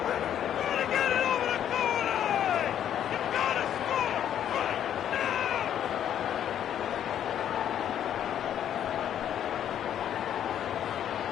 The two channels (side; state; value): right; quieter; 10.1 dB